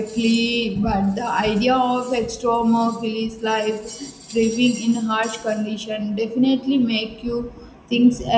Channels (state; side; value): identical; both; correlation 1.00